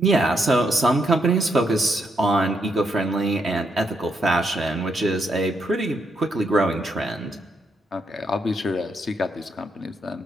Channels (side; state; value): both; normal; correlation 0.78